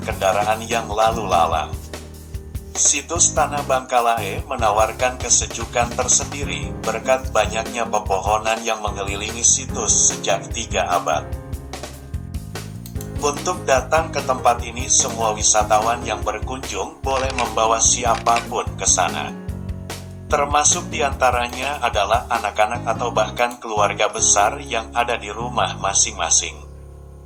kendaraan yang lalu lalang, situs Tanah Bangkalai menawarkan kesejukan tersendiri berkat banyaknya pepohonan yang mengelilingi situs sejak 3 abad. Untuk datang ke tempat ini, semua wisatawan yang berkunjung boleh membawa siapapun ke sana. Termasuk diantaranya adalah anak-anak atau bahkan keluarga besar yang ada di rumah masing-masing.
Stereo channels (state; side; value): identical; both; correlation 1.00